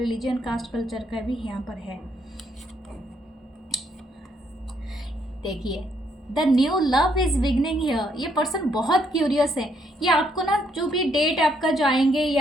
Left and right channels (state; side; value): normal; both; correlation 0.72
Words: कास्ट कल्चर का भी यहाँ पर है। देखिए, the new love is beginning here. ये पर्सन बहुत क्यूरियस है। ये आपको ना जो भी डेट आपका जाएंगे